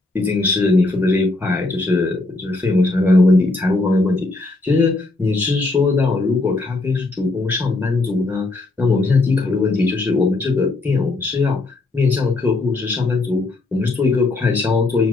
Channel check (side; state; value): right; quieter; 3.1 dB